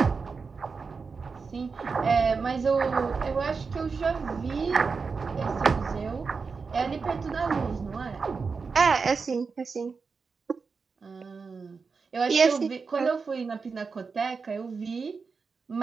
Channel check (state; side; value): quieter; left; 5.0 dB